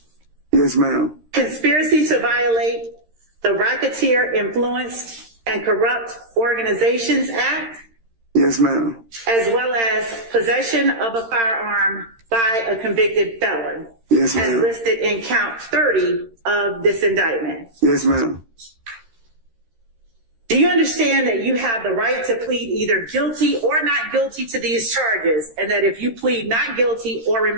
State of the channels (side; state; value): left; late; 13 ms